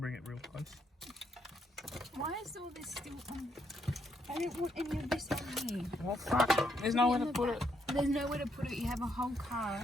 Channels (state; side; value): normal; both; correlation 0.75